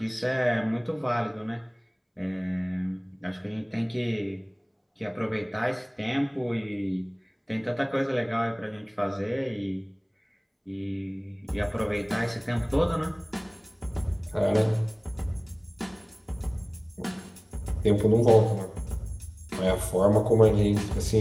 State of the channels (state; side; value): identical; both; correlation 1.00